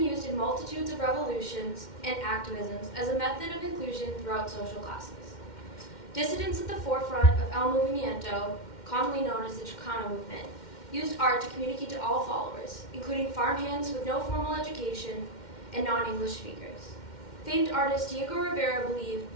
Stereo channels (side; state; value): right; late; 2.1 ms